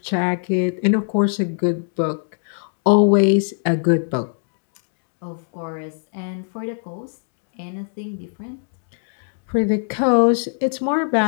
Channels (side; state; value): right; silent; digital silence